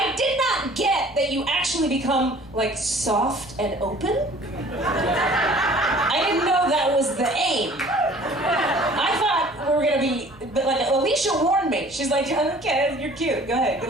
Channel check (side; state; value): right; noise; hum, 27 dB below the sound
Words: did not get that you actually become like soft and open. I didn't know that was the aim. I thought we were gonna be, but like Alicia warned me. She's like, okay, you're cute. Go ahead, good